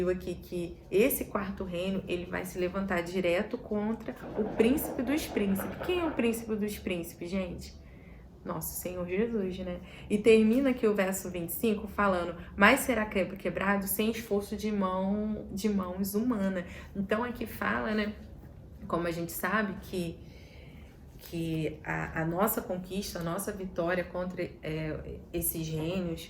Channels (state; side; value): identical; both; correlation 1.00